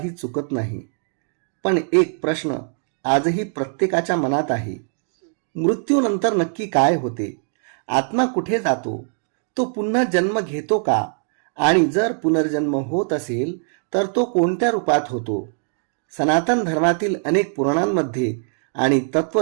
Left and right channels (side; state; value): left; silent; 58 dB below the other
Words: चुकत नाही. पण एक प्रश्न आजही प्रत्येकाच्या मनात आहे. मृत्यूनंतर नक्की काय होते? आत्मा कुठे जातो? तो पुन्हा जन्म घेतो का? आणि जर पुनर्जन्म होत असेल तर तो कोणत्या रूपात होतो? सनातन धर्मातील अनेक पुराणांमध्ये आणि